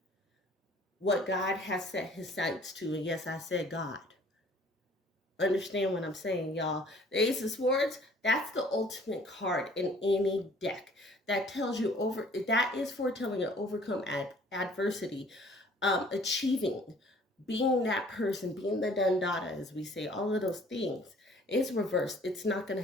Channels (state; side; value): normal; both; correlation 0.54